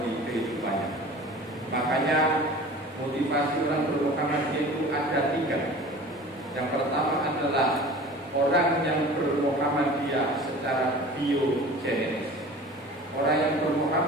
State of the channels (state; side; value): normal; both; correlation 0.41